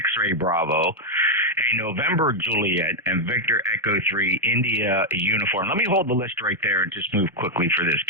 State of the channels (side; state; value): both; normal; correlation 0.00